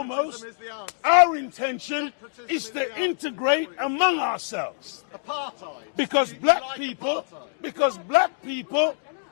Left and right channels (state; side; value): silent; right; digital silence